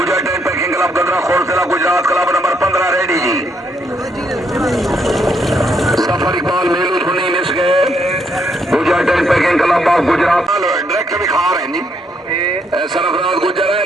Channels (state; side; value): normal; both; correlation 0.74